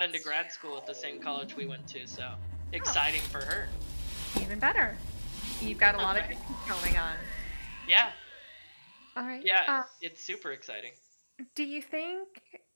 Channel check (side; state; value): both; inverted; correlation -1.00